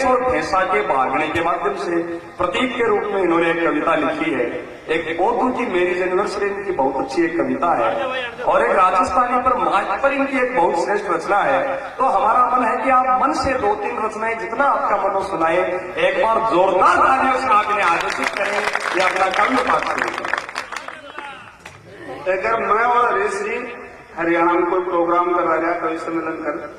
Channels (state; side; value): identical; both; correlation 1.00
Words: और भैंसा के भागने के माध्यम से प्रतीक के रूप में इन्होंने एक कविता लिखी है। एक ओतू की मेरी यूनिवर्सिटी की बहुत अच्छी एक कविता है और एक राजस्थानी पर मार्च पर इनकी एक बहुत श्रेष्ठ रचना है। तो हमारा मन है कि आप मन से 2-3 रचनाएं जितना आपका मन सुनाए, एक बार जोरदार तालियों से आप इन्हें आकर्षित करें, ये अपना काव्य पाठ करें। अगर मैं और हरीश जी हरियाणा में कोई प्रोग्राम करा रहा कवि सम्मेलन कर,